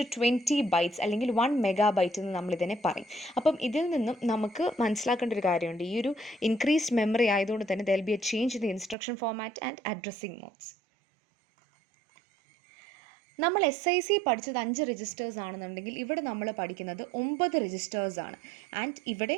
bytes അല്ലെങ്കിൽ 1 മെഗാബൈറ്റ് എന്ന് നമ്മൾ ഇതിനെ പറയും. അപ്പം ഇതിൽ നിന്നും നമുക്ക് മനസ്സിലാക്കേണ്ട ഒരു കാര്യമുണ്ട്. ഈ ഒരു ഇൻക്രീസ്ഡ് മെമ്മറി ആയതുകൊണ്ട് തന്നെ there will be A change in the instruction format and addressing modes. നമ്മൾ SIC പഠിച്ചത് 5 രജിസ്റ്റേഴ്സ് ആണെന്നുണ്ടെങ്കിൽ ഇവിടെ നമ്മൾ പഠിക്കുന്നത് 9 രജിസ്റ്റേഴ്സ് ആണ്. ആൻഡ് ഇവിടെ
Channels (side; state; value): left; drops out; at 9.0 s